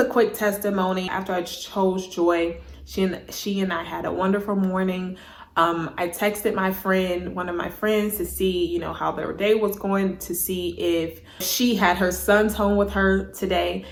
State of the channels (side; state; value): both; identical; correlation 1.00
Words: quick testimony. After I chose joy, she and I had a wonderful morning. I texted one of my friends, to see, how their day was going, to see if she had her sons home with her today.